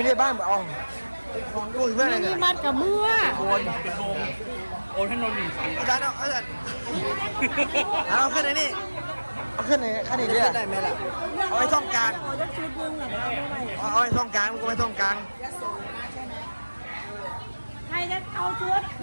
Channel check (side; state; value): both; inverted; correlation -1.00